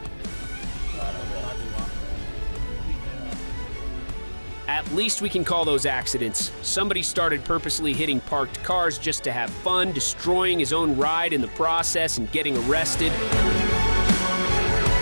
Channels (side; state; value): both; inverted; correlation -1.00